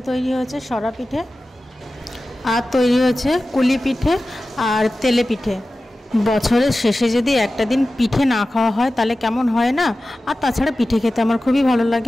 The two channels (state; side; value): normal; both; correlation 0.95